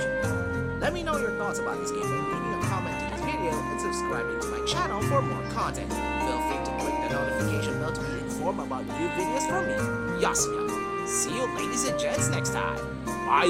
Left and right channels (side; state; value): both; identical; correlation 1.00